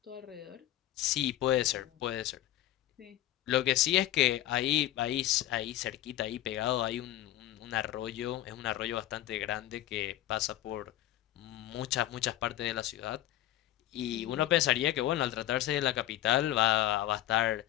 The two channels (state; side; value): quieter; right; 13.9 dB